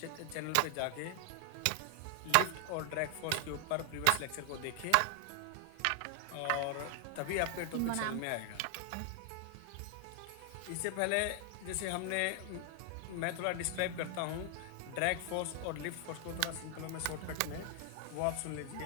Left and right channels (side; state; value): both; different; correlation 0.00